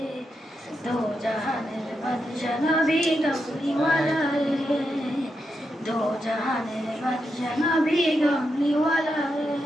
দো জাহানের বাদশা নবী কামলিওয়ালা রে, দো জাহানের বাদশা নবী কামলিওয়ালা রে।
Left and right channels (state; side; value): normal; both; correlation 0.85